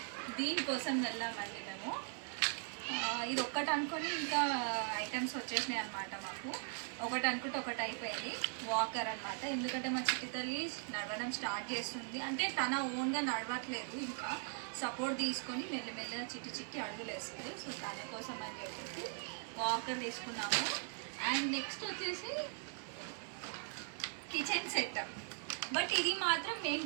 దీనికోసం వెళ్ళామండి మేము. ఇది ఒక్కటి అనుకొని ఇంకా ఐటమ్స్ వచ్చేసినాయి అనమాట. మాకు ఒకటి అనుకుంటే ఒకటి అయిపోయింది. వాకర్ అనమాట. ఎందుకంటే మా చిట్టి తల్లి నడవడం స్టార్ట్ చేస్తుంది. అంటే తన ఓన్గా నడవట్లేదు, ఇంకా సపోర్ట్ తీసుకొని మెల్లమెల్లగా చిట్టి అడుగులు వేస్తుంది. సో తన కోసం అని చెప్పేసి వాకర్ తీసుకున్నాము. అండ్ నెక్స్ట్ వచ్చేసి కిచెన్ సెట్. బట్ ఇది మాత్రం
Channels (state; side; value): silent; left; 51 dB below the other